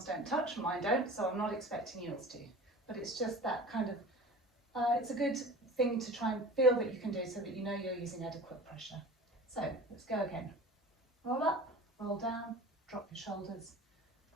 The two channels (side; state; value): both; normal; correlation 0.39